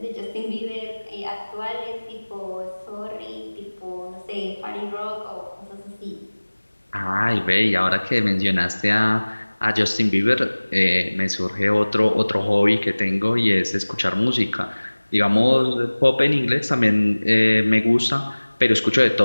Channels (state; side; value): inverted; both; correlation -1.00